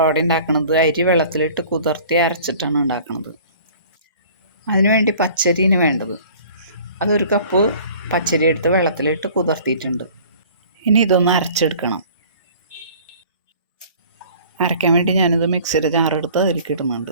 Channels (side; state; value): both; inverted; correlation -0.49